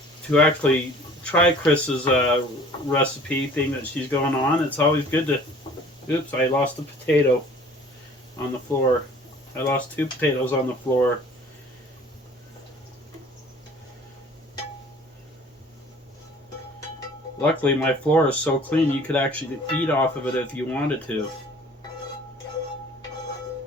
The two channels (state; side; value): normal; both; correlation 0.50